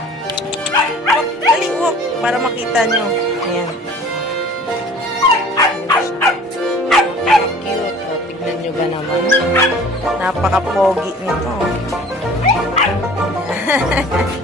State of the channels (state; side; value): normal; both; correlation 0.47